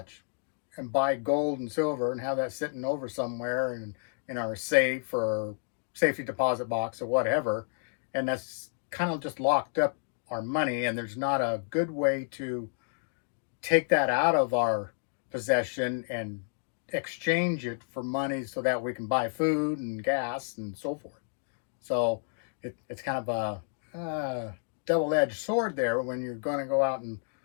and buy gold and silver and have that sitting over somewhere in our safe or safety deposit box or whatever, and that's kind of just locked up our money, and there's not a good way to take that out of our possession and exchange it for money so that we can buy food and gas and so forth. So it's kind of a double-edged sword there when you're going to go out and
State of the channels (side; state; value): right; silent; digital silence